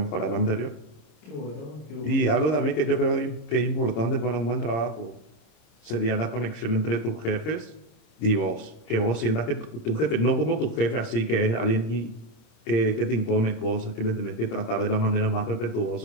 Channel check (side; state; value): right; late; 26 ms